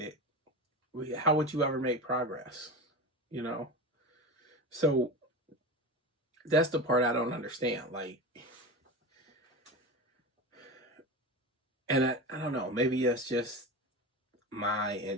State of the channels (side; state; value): both; normal; correlation 0.25